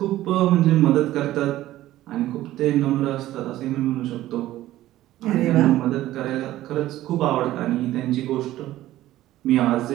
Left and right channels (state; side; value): quieter; left; 14.9 dB